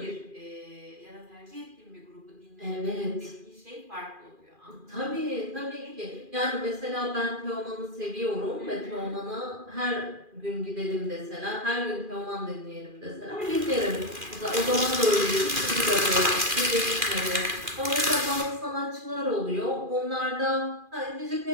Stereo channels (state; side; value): late; left; 2.4 ms